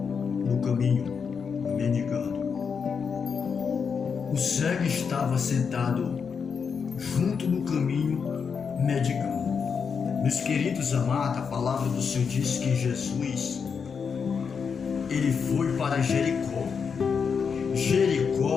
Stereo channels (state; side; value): quieter; right; 6.1 dB